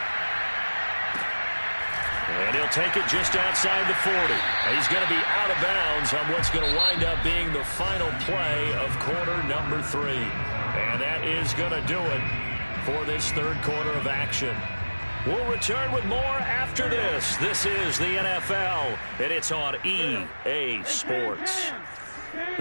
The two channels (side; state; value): both; inverted; correlation -1.00